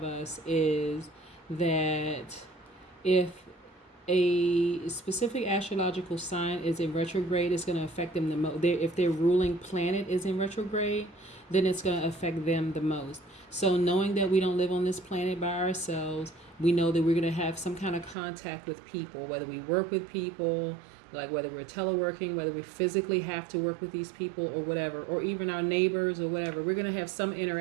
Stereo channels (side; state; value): left; drops out; at 18.2 s